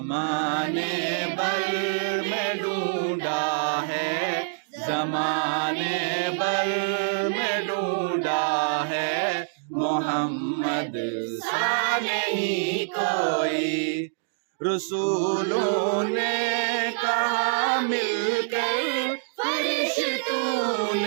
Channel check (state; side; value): silent; left; digital silence